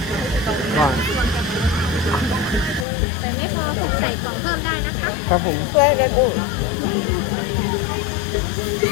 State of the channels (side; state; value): right; drops out; at 2.9 s